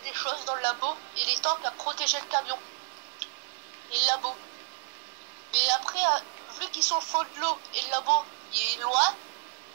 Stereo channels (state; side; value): silent; left; digital silence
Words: des choses dans le labo et les tanks à protéger le camion et le labo. Mais après, vu qu'ils sont au fond de l'eau et le labo il est loin,